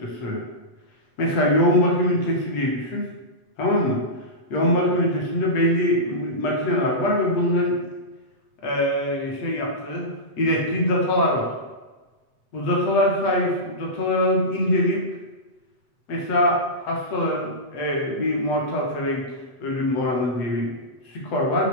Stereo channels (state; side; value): late; right; 7.9 ms